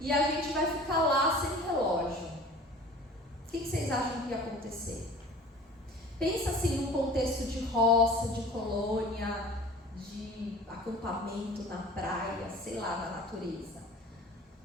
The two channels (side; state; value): both; normal; correlation 0.43